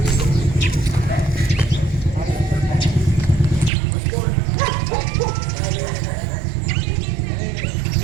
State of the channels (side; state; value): left; drops out; at 3.7 s